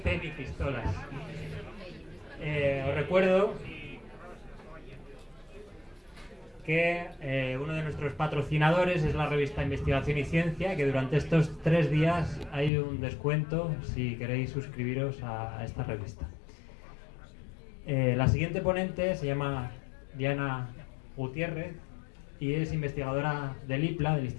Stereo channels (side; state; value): right; drops out; at 12.7 s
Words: ni pistolas. Os recuerdo que uno de nuestros patrocinadores es la revista Investigación y Ciencia, que durante estos 3 días hay un descuento si queréis suscribiros a esta revista. La siguiente ponente se llama Diana Gutiérrez y es investigadora del IPLA, del